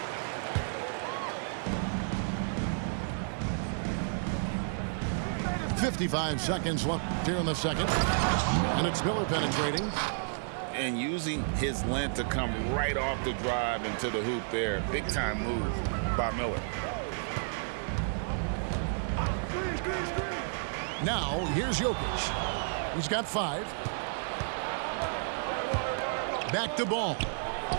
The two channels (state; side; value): silent; left; digital silence